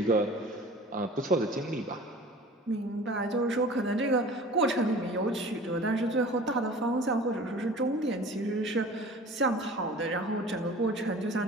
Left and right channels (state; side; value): normal; both; correlation 0.43